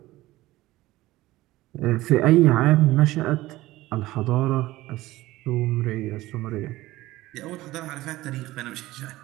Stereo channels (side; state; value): left; quieter; 17.5 dB